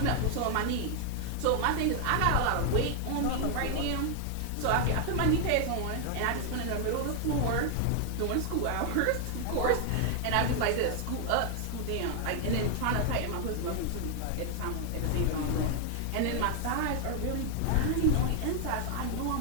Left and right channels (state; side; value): different; both; correlation 0.00